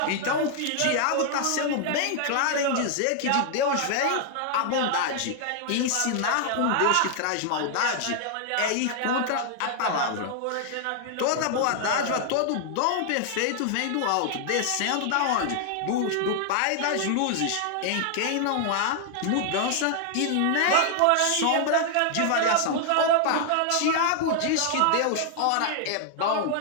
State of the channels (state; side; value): different; both; correlation 0.00